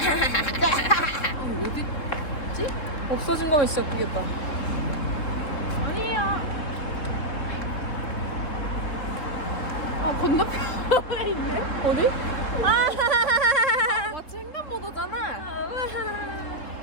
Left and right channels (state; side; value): late; right; 3.7 ms